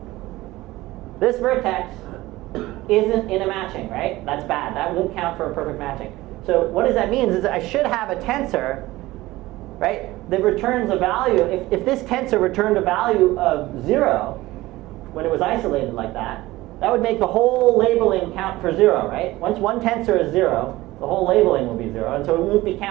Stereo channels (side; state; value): left; quieter; 18.2 dB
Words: This vertex isn't in a matching, right? That's bad. That won't count for a perfect matching. So what does that mean is I should have a tensor, right, that returns a value. If this tensor returned a value of 0 when it was isolated like that, that would make the whole labeling count for 0, right? Once one tensor is 0, the whole labeling will be 0, and so it won't be